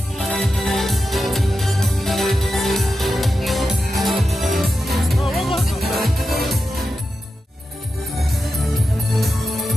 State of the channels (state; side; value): normal; both; correlation 0.90